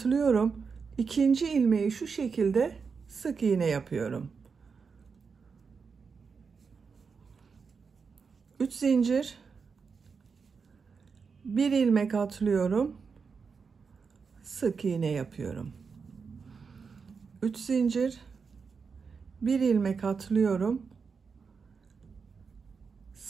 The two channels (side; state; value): left; quieter; 5.4 dB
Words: İkinci ilmeği şu şekilde sık iğne yapıyorum. 3 zincir, bir ilmek atlıyorum, sık iğne yapıyorum. 3 zincir, bir ilmek atlıyorum,